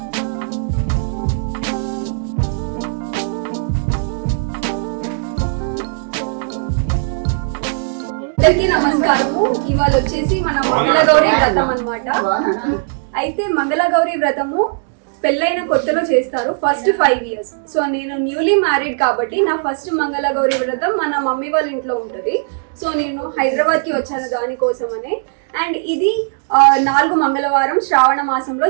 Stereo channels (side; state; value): left; silent; digital silence